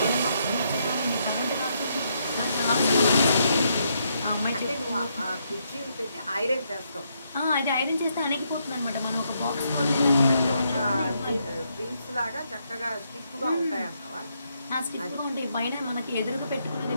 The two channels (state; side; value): inverted; both; correlation -0.77